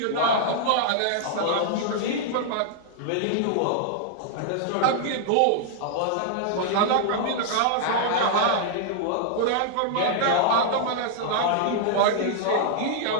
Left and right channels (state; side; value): different; both; correlation -0.01